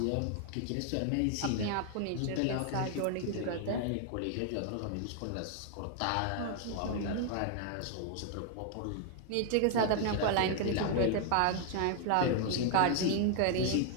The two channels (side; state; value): both; different; correlation 0.00